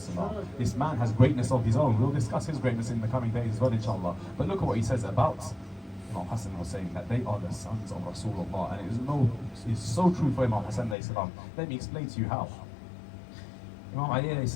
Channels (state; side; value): drops out; right; at 11.0 s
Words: This man has greatness of his own. We'll discuss his greatness in the coming days as well, inshallah. But look at what he says about Imam Hassan was saying that they are the sons of Rasulullah, and it's so true for Imam Hassan alayhi salam. Let me explain to you how. Imam Ali alayhi